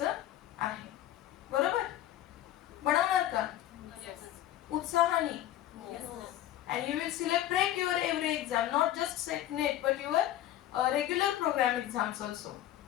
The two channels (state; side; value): quieter; right; 13.1 dB